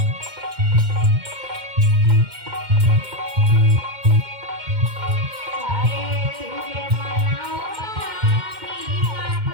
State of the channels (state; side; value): late; left; 2.1 ms